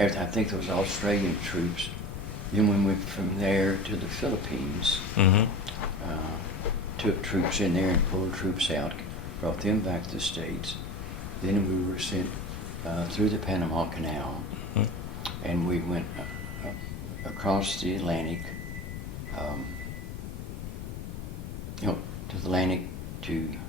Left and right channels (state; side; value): noise; left; rumble, 7 dB below the sound